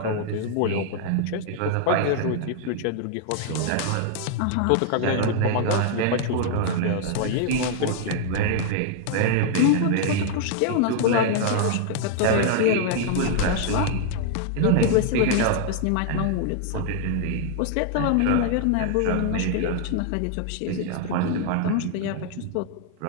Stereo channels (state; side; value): different; both; correlation 0.00